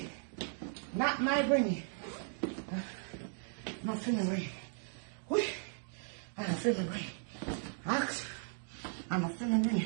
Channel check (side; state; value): left; silent; 53 dB below the other